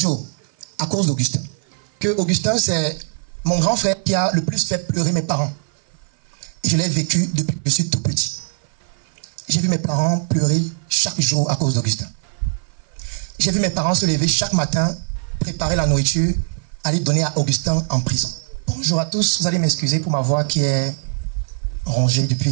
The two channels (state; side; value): silent; left; 55 dB below the other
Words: à cause d'Augustin. Que Augustin, c'est mon grand frère qui a le plus fait pleurer mes parents. Et je l'ai vécu depuis que je suis tout petit. J'ai vu mes parents pleurer chaque jour à cause d'Augustin. J'ai vu mes parents se lever chaque matin, préparer la nourriture, aller donner à Augustin en prison. Bonjour à tous, vous allez m'excuser pour ma voix qui est rongée